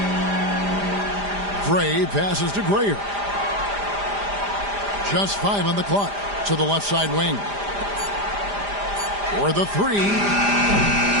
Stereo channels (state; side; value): late; left; 5.0 ms